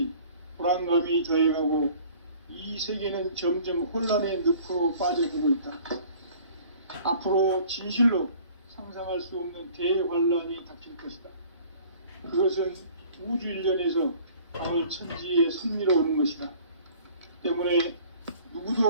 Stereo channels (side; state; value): both; inverted; correlation -0.51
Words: 불안감이 더해가고 이 세계는 점점 혼란의 늪으로 빠져들고 있다. 앞으로 진실로 상상할 수 없는 대환란이 닥칠 것이다. 그것은 우주 일련에서 가을 천지에 섭리로 오는 것이다. 때문에